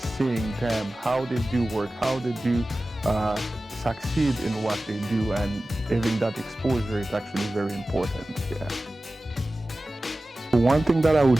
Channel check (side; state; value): both; normal; correlation 0.96